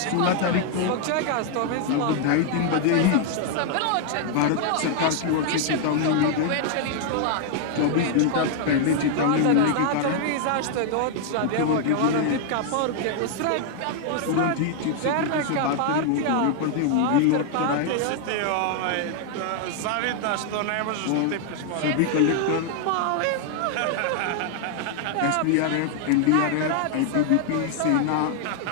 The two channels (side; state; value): both; different; correlation 0.00